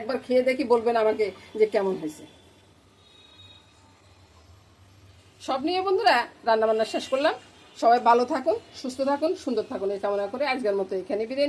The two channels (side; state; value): both; identical; correlation 1.00